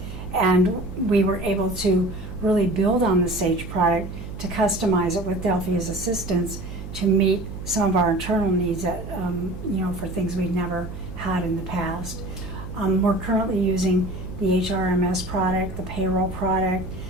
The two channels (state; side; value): noise; right; hum, 10 dB below the sound